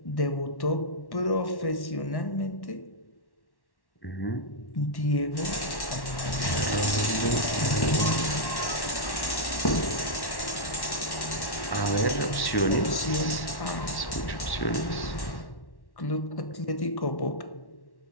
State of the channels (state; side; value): late; right; 1.1 ms